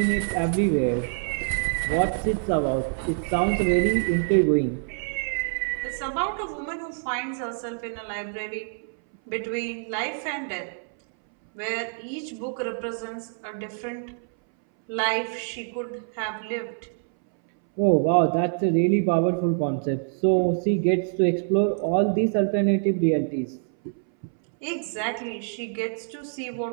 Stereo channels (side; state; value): left; silent; 61 dB below the other